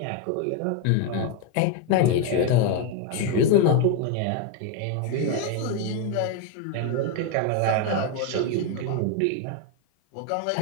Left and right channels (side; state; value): both; different; correlation 0.02